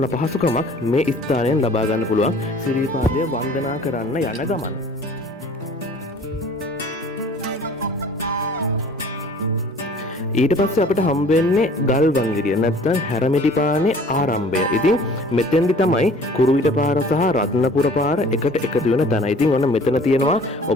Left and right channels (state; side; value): normal; both; correlation 0.50